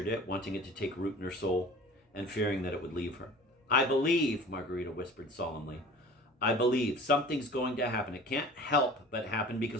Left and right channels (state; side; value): normal; both; correlation 0.42